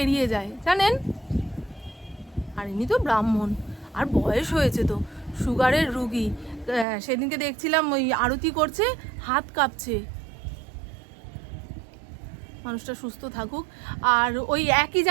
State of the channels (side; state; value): left; drops out; at 6.9 s